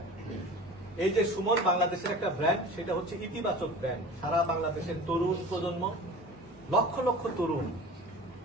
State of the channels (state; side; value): normal; both; correlation 0.38